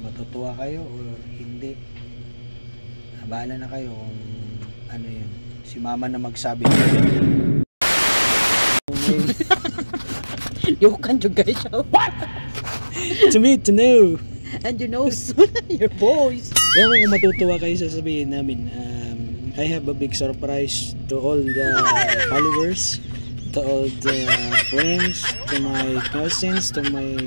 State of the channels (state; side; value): inverted; both; correlation -1.00